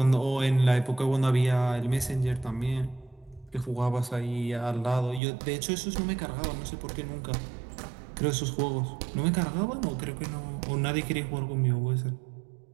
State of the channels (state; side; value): drops out; left; at 5.2 s